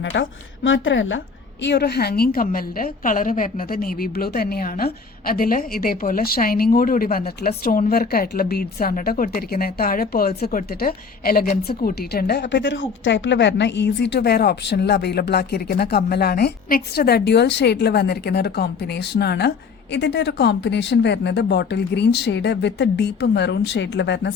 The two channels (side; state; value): right; quieter; 5.3 dB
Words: കേട്ടോ. മാത്രമല്ല ഈ ഒരു ഹാങ്ങിങ് കമ്മലിന്റെ കളറ് വരുന്നത് നേവി ബ്ലൂ തന്നെയാണ്. അതിൽ ഇതേപോലെ ഷൈനിങ്ങോടുകൂടി വന്നിട്ടുള്ള സ്റ്റോൺ വർക്ക് ആയിട്ടുള്ള ബീഡ്സ് ആണ് കേട്ടോ കൊടുത്തിരിക്കുന്നത്. താഴെ പേൾസ് കൊടുത്തിട്ട് എലഗൻസ് കൂട്ടിയിട്ടുണ്ട്. അപ്പൊ ഇതൊരു ഹുക്ക് ടൈപ്പിൽ വരുന്ന ഈസി ടു വെയർ ഓപ്ഷനിൽ അവൈലബിൾ ആക്കിയിരിക്കുന്ന കമ്മലാണ്. നെക്സ്റ്റ് ഡ്യുവൽ ഷെയ്ഡിൽ വന്നിരിക്കുന്ന ഒരു കോമ്പിനേഷൻ ആണ്. ഇതിന്റെ ഒരു കോമ്പിനേഷൻ വരുന്നത് ബോട്ടിൽ ഗ്രീൻ ഷെയ്ഡ് വിത്ത് ഡീപ്പ് മെറൂൺ ഷെയ്ഡിൽ വരുന്ന